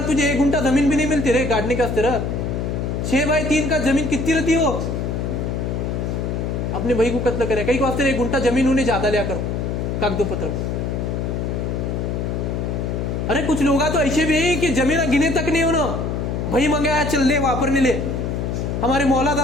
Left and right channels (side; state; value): left; noise; hum, 2 dB below the sound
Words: तुझे 1 घंटा जमीन भी नहीं मिलती रे गाड़ने के अस्तर। 6x3 का जमीन कितनी रहती हो, अपने भाई को कत्ल करे, कई को वास्ते 1 घंटा जमीन उन्हें ज्यादा लिया करो कागदों पत्र। अरे कुछ लोग तो ऐसे भी है कि जमीन गिने तक नहीं होना, भाई मंगाया चल ले वापरने ले। हमारे मौला